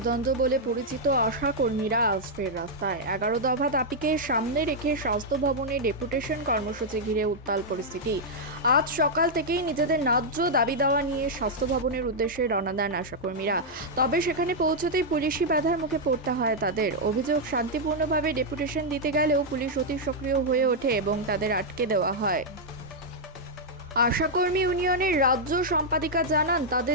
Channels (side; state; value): both; normal; correlation -0.04